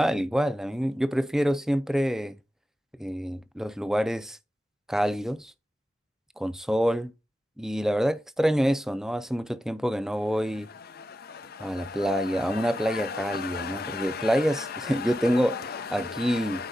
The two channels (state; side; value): normal; both; correlation 0.91